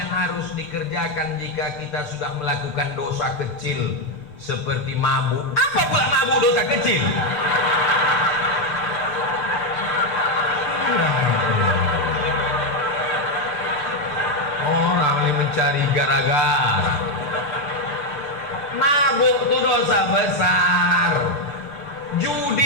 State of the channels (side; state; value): right; late; 6.8 ms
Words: harus dikerjakan jika kita sudah melakukan dosa kecil seperti mabuk? Apa pula mabuk dosa kecil? Orang ini mencari gara-gara. Mabuk itu dosa besar.